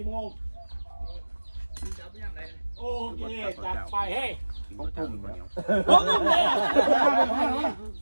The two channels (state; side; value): inverted; both; correlation -1.00